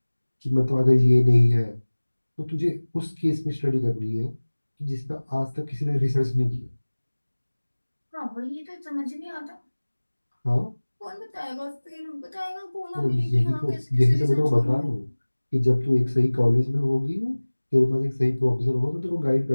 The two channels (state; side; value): inverted; both; correlation -1.00